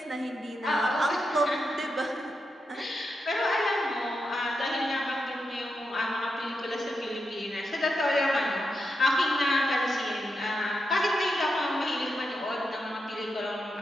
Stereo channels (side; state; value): both; normal; correlation 0.86